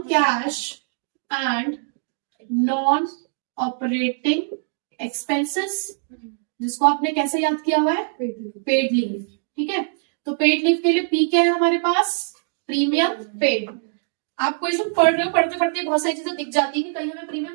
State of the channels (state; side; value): silent; left; digital silence